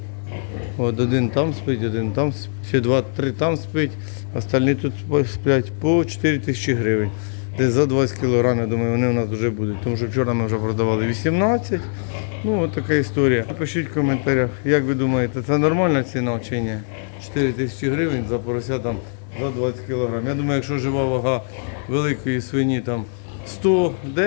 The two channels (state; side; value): silent; right; digital silence